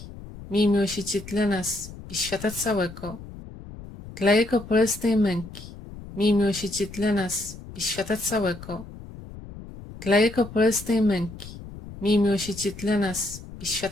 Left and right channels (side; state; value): left; noise; rumble, 14 dB below the sound